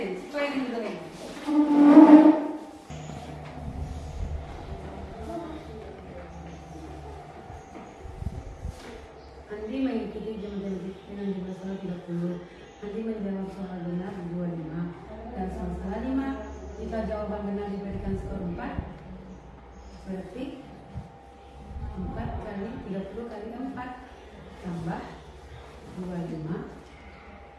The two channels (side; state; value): both; identical; correlation 1.00